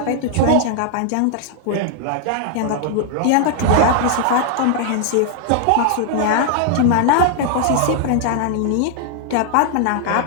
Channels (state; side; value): different; both; correlation 0.00